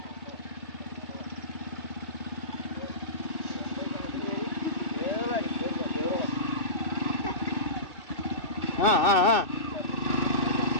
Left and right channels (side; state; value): right; late; 2.6 ms